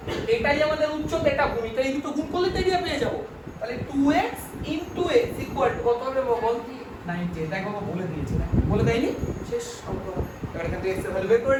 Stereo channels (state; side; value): identical; both; correlation 1.00